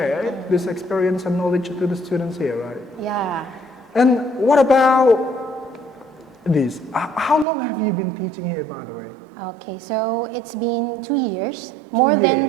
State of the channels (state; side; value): drops out; left; at 7.5 s